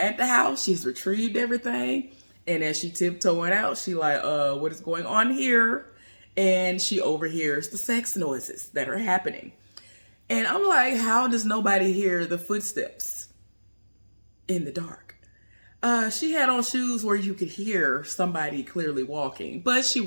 the house, she's retrieved everything, and as she tiptoeing out, she like, what is going on here? And she overhears the sex noises that are happening. And I'm like, how does nobody hear the footsteps in the dark? She had on shoes where you could hear somebody clearly walking, but she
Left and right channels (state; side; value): inverted; both; correlation -1.00